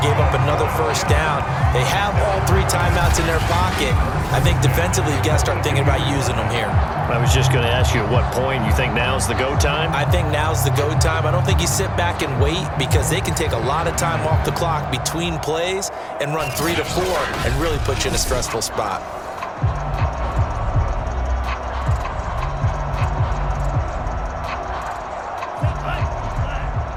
gave up another first down. They have all 3 timeouts in their pocket. I think defensively, you've got to start thinking about using them here. I was just going to ask you at what point you think now's the go time? I think now's the go time. I don't think you sit back and wait, because they can take a lot of time off the clock between plays and run 3 to 4 and really put you in a stressful spot.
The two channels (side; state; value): both; identical; correlation 1.00